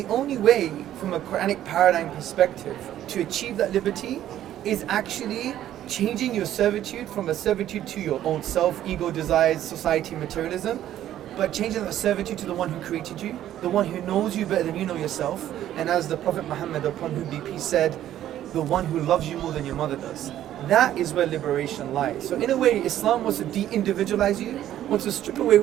only way, from a Quranic paradigm perspective, to achieve that liberty is actually changing your servitude from a servitude to your own self, ego, desires, society, materialism, but changing that servitude to the one who created you, the one who knows you better than you know yourself. And as the Prophet Muhammad, upon whom be peace, said, the one who loves you more than your mother does. That is where liberation lies. So in a way, Islam wants to de-individualize you, wants to strip away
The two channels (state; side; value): quieter; left; 12.1 dB